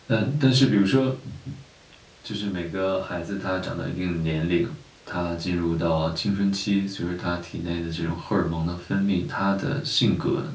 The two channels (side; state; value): both; identical; correlation 1.00